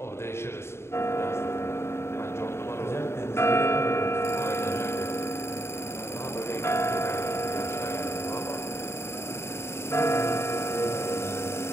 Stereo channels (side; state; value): right; late; 0.12 ms